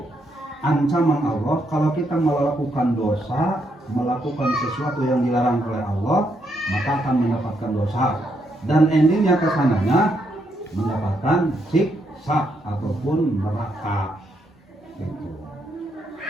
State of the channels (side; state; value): both; normal; correlation 0.77